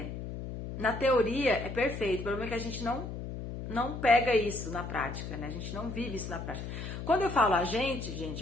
na teoria é perfeito, o problema é que a gente não pega isso na prática, né? A gente não vive isso na prática. Quando eu falo a gente,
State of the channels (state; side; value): noise; left; hum, 7 dB below the sound